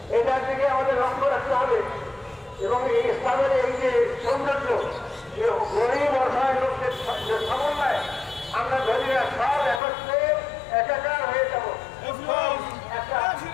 এটার দিকে আমাদের লক্ষ্য রাখতে হবে এবং এই ইসলামের এই যে সৌন্দর্য গরিব অসহায় লোকদের সমন্বয় আমরা ধরি না সব একত্রে একাকার হয়ে যাব একটা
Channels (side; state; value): right; drops out; at 9.8 s